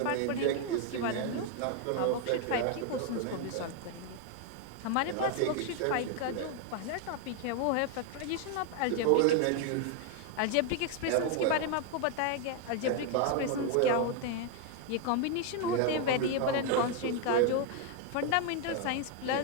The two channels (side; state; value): both; different; correlation 0.01